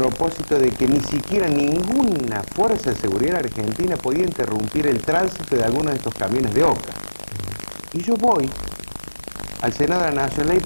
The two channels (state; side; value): inverted; both; correlation -1.00